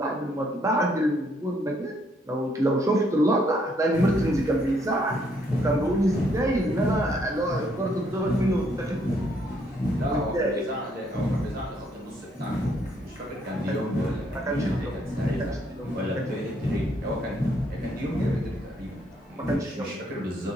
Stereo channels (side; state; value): both; normal; correlation 0.70